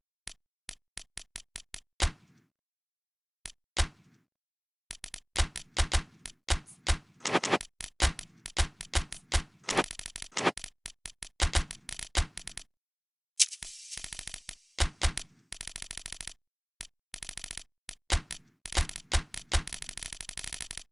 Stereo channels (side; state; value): both; identical; correlation 1.00